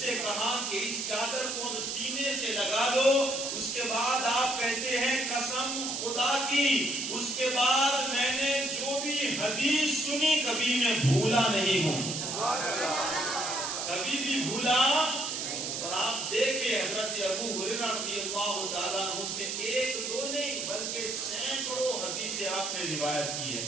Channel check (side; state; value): right; noise; hiss, 3 dB below the sound